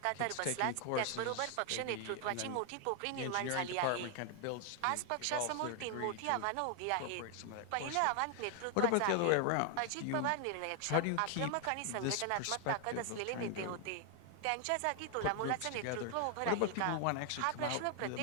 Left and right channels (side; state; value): both; different; correlation 0.00